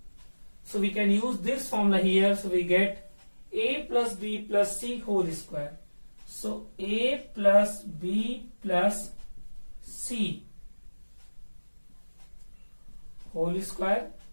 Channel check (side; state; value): both; inverted; correlation -1.00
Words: So we can use this formula here. So we get a plus b plus c whole square. So a plus b plus c whole square